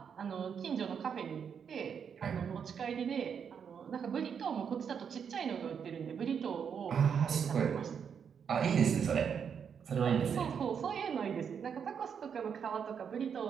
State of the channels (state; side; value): quieter; left; 7.2 dB